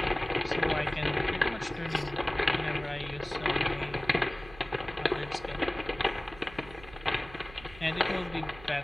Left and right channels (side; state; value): right; noise; hum, 18 dB below the sound